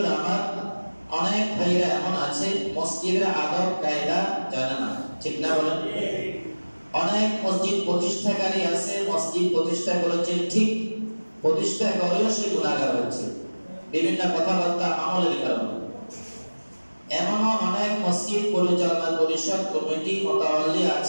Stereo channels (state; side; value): inverted; both; correlation -1.00